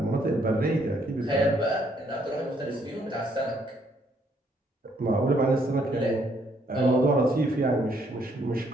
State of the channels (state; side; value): normal; both; correlation 0.69